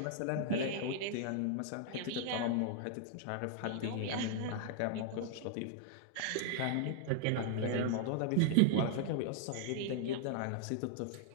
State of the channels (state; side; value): different; both; correlation -0.01